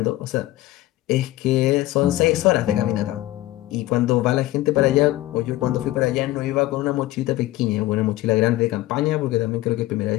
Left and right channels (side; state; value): right; quieter; 16.7 dB